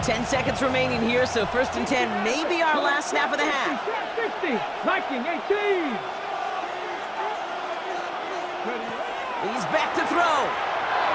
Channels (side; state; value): both; identical; correlation 1.00